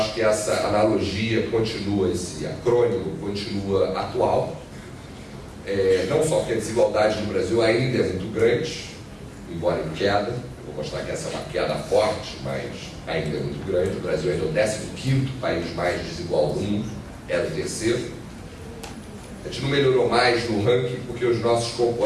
que essa analogia continua, esse acrônimo continua atual. Não só porque a desigualdade no Brasil ainda é muito grande, embora em queda. Eu vou mostrar que essa é uma queda forte, mas ainda é muito grande. O Brasil ainda é o 15º país mais desigual do mundo, era o 3º. A gente não melhorou mais no ranking porque os nossos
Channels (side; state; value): both; identical; correlation 1.00